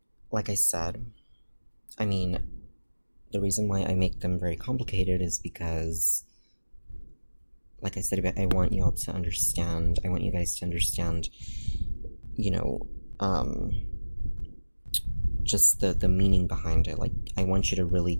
Like I said, I mean, the reason why I make them very complicated is because, like I said, I want you guys to understand, you know, just the meaning behind it. Like, I want you to really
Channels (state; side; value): inverted; both; correlation -1.00